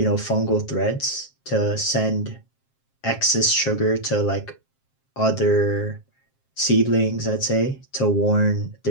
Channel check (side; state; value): right; late; 7.5 ms